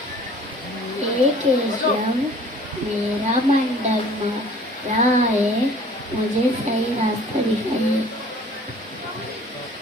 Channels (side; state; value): both; normal; correlation 0.50